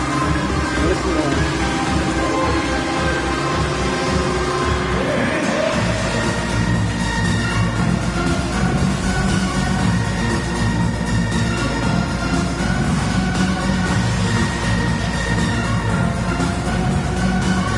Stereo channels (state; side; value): identical; both; correlation 1.00